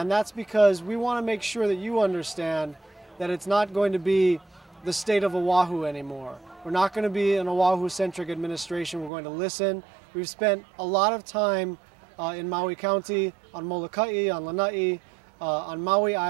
that's because we want to make sure that you understand that it's not going to be the state of Oahu anymore. We're not going to be an Oahu-centric administration. We're going to listen. We've spent a lot of time in Maui County, on Molokai, on Lanai, on Maui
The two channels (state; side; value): drops out; left; at 9.1 s